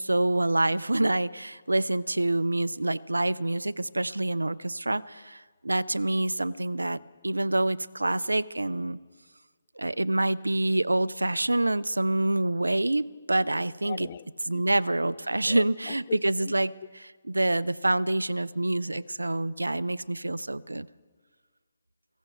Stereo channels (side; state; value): both; inverted; correlation -0.99